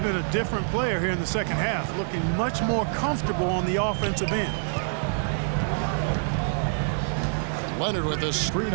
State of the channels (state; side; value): silent; left; digital silence